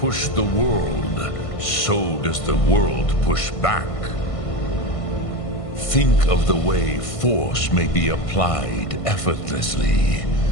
the world, so does the world push back. Think of the way force may be applied effortlessly.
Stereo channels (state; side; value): late; right; 1.5 ms